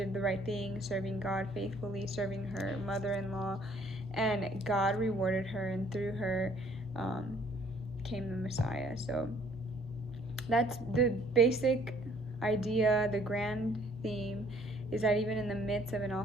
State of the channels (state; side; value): normal; both; correlation 0.60